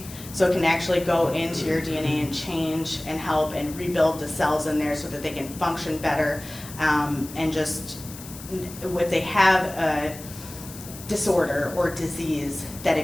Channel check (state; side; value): noise; left; hiss, 15 dB below the sound